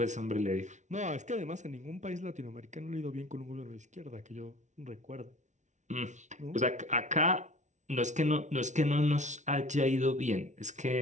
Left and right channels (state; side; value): late; left; 0.35 ms